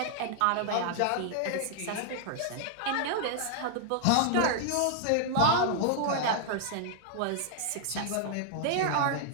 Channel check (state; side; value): different; both; correlation 0.00